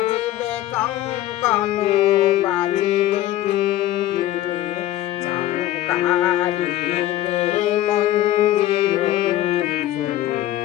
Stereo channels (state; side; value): quieter; right; 14.0 dB